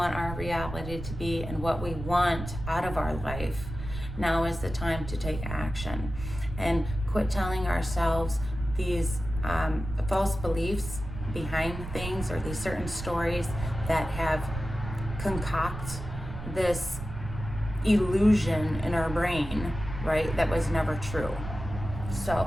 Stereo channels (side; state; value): right; noise; rumble, 9 dB below the sound